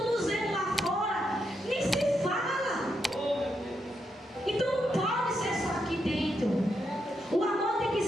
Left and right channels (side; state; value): both; normal; correlation 0.82